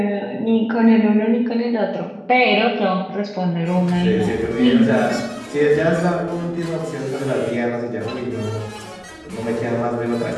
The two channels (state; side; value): identical; both; correlation 1.00